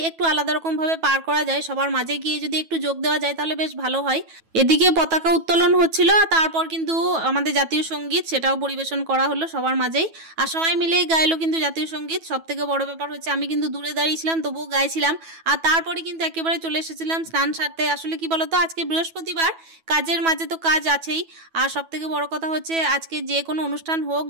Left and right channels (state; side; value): late; left; 9.2 ms